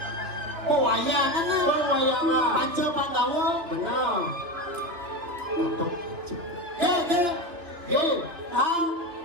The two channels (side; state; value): left; late; 2.9 ms